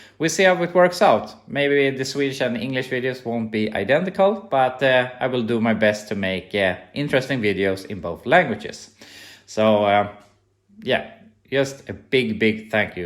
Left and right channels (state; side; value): identical; both; correlation 1.00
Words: we'll see how it works out. Maybe the Swedish and English videos won't be identical, but I will do my best to make interesting videos in both languages. So yeah, just a big thank